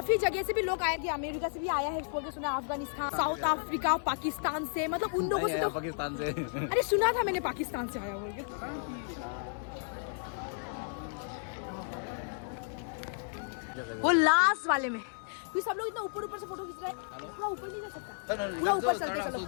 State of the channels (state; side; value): silent; right; digital silence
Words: जगह से भी लोग आए थे, अमेरिका से भी आया है बोल के सुना, अफगानिस्तान, साउथ अफ्रीका, पाकिस्तान से। मतलब उन लोगों से तो पाकिस्तान से अरे सुना था मैंने पाकिस्तान से आया बोल के। वो लास्ट वाले में क्योंकि सब लोग इतना ऊपर ऊपर से फोटो खींच रहे हैं। पूरा ऊपर नहीं जा सकता, पूरा ऊपर चलते चलो।